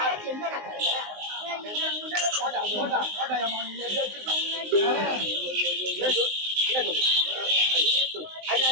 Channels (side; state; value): left; late; 19 ms